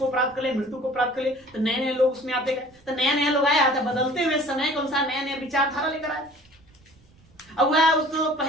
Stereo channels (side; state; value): right; noise; rumble, 29 dB below the sound